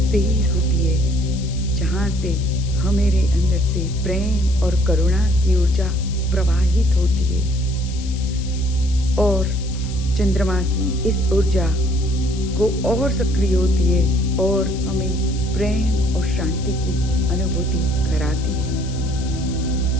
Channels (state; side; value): noise; left; hiss, 16 dB below the sound